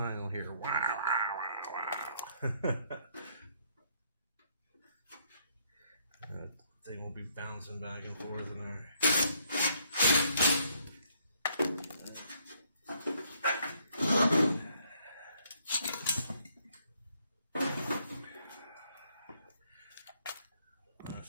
and you'll hear wow, wow, wow, wow. That thing will be bouncing back and forth in there.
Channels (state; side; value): inverted; both; correlation -0.70